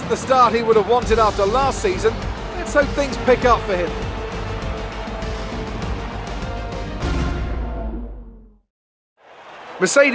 the start he would have wanted after last season. Let's hope things pick up for him.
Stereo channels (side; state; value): both; identical; correlation 1.00